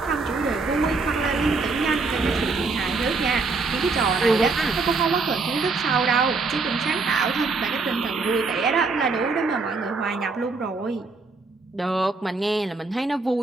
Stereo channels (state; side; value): quieter; left; 4.0 dB